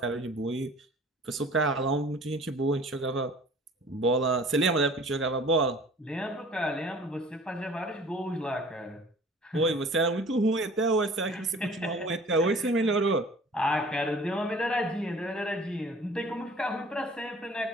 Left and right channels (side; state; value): both; normal; correlation 0.48